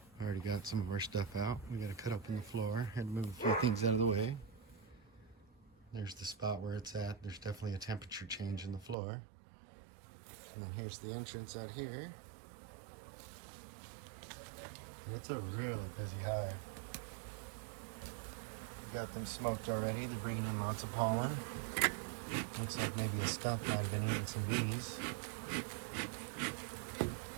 Already got some of our stuff out. We got to cut open the floor. Had to move a few things out of the way. There's the spot where it's at. There's definitely a temperature change in the floor. And then here's the entrance out here. And it's a really busy hive. We got them smoked already. They're bringing in lots of pollen. Looks like maybe a skunk might have been eating some bees. But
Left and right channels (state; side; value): drops out; left; at 9.0 s